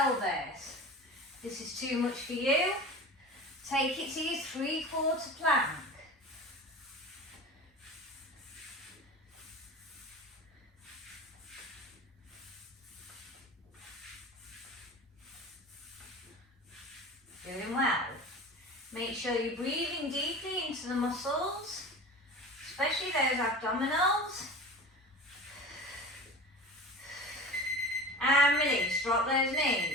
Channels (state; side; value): normal; both; correlation 0.34